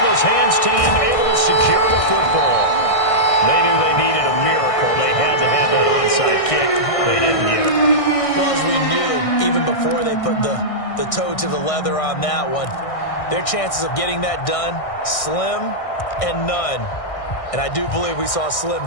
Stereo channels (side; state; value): right; late; 1.6 ms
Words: hands team able to secure the football. They knew they needed a miracle. They had to have that onside kick. They didn't get it. Well, as we knew, even before they put the toe to the leather on that one, their chances of getting that done, slim and none. And I do believe we saw Slim